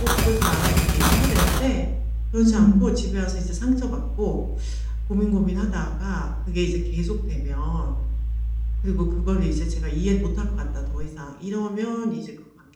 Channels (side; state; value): both; identical; correlation 1.00